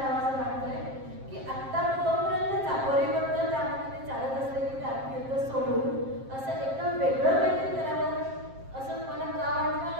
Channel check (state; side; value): late; left; 7.5 ms